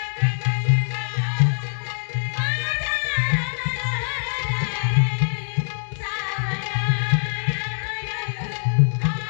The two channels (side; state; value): right; silent; digital silence